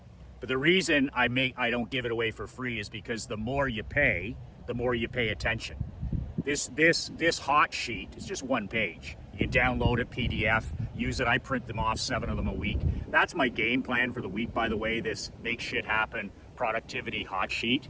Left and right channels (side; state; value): both; identical; correlation 1.00